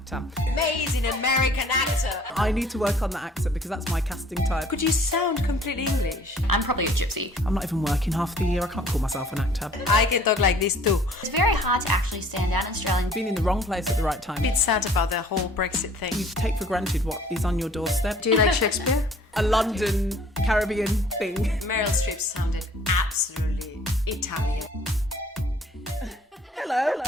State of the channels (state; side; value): normal; both; correlation 0.54